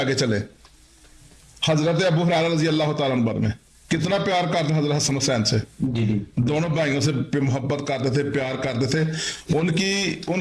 चले, हजरत अबू हुरैरा रजी अल्लाह ताला अन्हु में कितना प्यार करते हजरत हसन हुसैन से, दोनों भाइयों से मोहब्बत करते थे, प्यार करते थे।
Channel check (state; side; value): identical; both; correlation 1.00